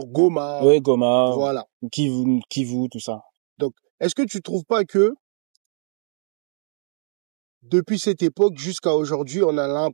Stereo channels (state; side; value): silent; left; digital silence